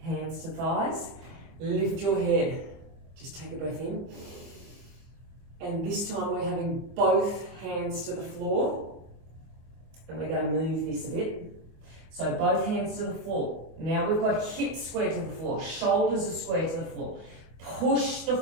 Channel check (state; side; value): late; left; 24 ms